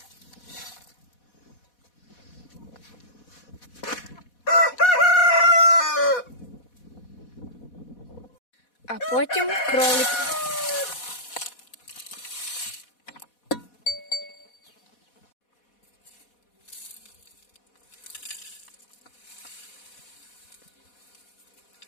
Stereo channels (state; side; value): late; right; 4.1 ms